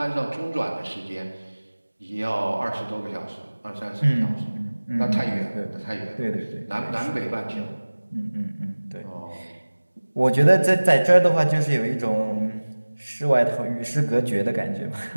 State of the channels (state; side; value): inverted; both; correlation -1.00